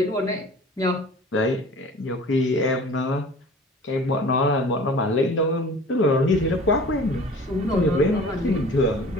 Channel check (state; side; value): normal; both; correlation 0.44